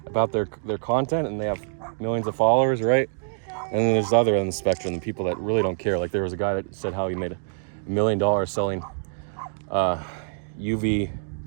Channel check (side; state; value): left; silent; digital silence